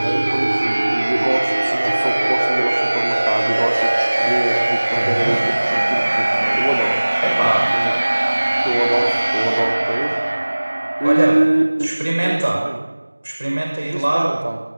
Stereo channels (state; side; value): inverted; both; correlation -1.00